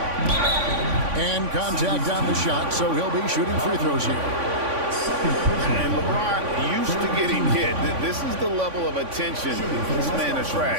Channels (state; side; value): late; left; 3.5 ms